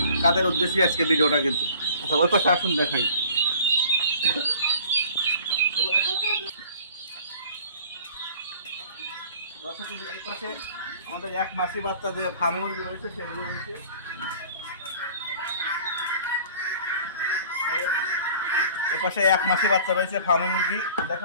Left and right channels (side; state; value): both; inverted; correlation -0.48